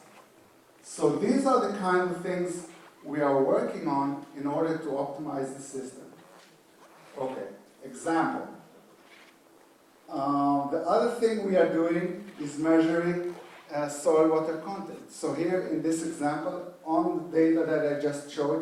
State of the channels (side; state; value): both; identical; correlation 1.00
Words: So these are the kind of things we are working on in order to optimize the system. Okay, example. The other thing we are doing is measuring soil water content. So here in this example, on the data that I just